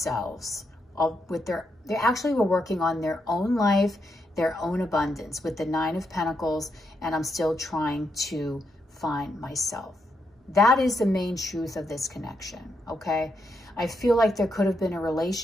They actually were working on their own life, their own abundance with the 9 of Pentacles, and I'm still trying to find myself. That is the main truth of this connection, okay? I feel like there could have been a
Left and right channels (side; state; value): both; normal; correlation 0.81